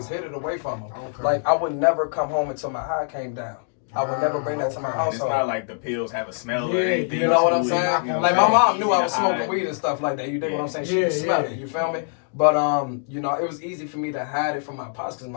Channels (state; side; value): silent; right; digital silence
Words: hid it away from them. Okay. Like, I would never come home until my high came down. I would never bring that to my household. It's not like the pills have a smell or anything. You know what I'm saying? Like, my mom knew I was smoking weed and stuff like that. You dig what I'm saying? She could smell it. You feel me? But, you know, it was easy for me to hide it from my pops because